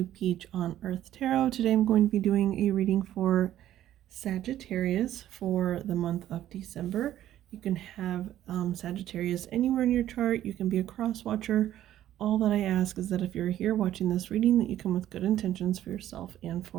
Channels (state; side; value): quieter; left; 12.5 dB